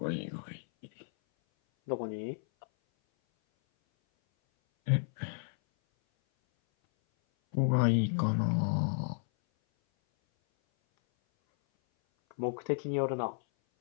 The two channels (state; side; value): silent; right; 56 dB below the other